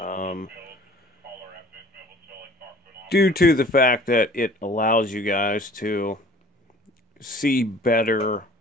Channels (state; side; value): normal; both; correlation 0.49